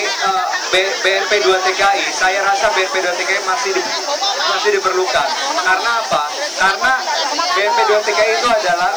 BNP 2 TKI, saya rasa BNP 2 TKI masih diperlukan. Karena apa? Karena BNP 2 TKI itu adalah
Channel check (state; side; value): noise; left; hiss, 28 dB below the sound